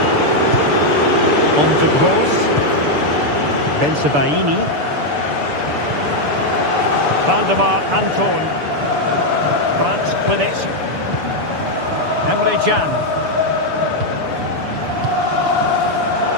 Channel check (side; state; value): left; late; 6.9 ms